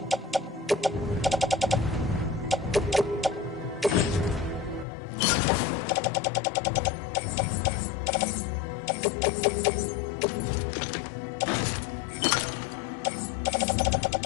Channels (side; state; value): right; drops out; at 4.9 s